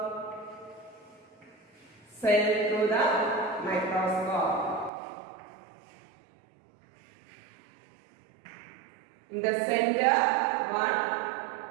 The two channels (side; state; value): left; drops out; at 4.9 s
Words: cell through the microscope, in the center one